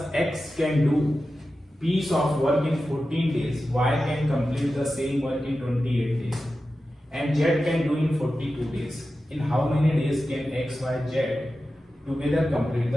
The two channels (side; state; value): both; normal; correlation 0.93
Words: x can do piece of work in 14 days, y can complete the same work in 28 days, and z can do in 42 days. In how many days can x, y, z together complete